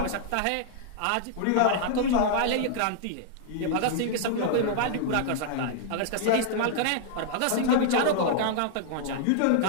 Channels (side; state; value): both; different; correlation -0.01